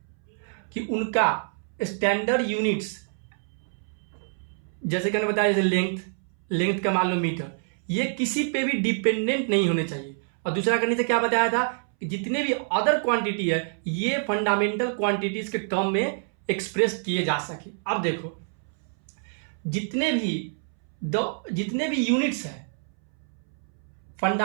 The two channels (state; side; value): silent; left; 60 dB below the other